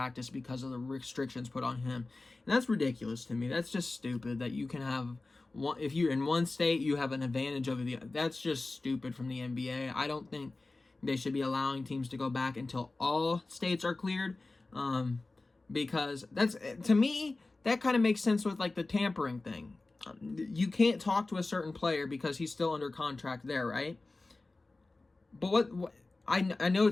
because of the restrictions put on him. And that's ridiculous to me. That's just stupid that you can have one, if you're in one state, you have an advantage over the other. That's just stupid from the NBA. I don't think they should be allowing teams to go back until all states are cleared, because that's, to me, that kind of makes sense with like the tampering thing. You can't talk to a certain player because he's still under contract there, right? But what I know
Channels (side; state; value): right; quieter; 3.3 dB